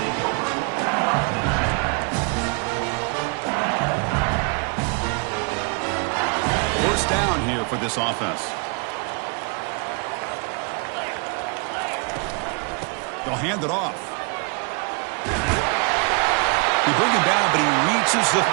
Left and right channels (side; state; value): left; quieter; 35.3 dB